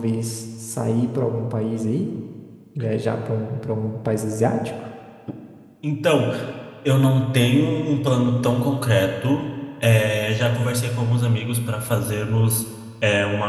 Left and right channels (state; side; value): identical; both; correlation 1.00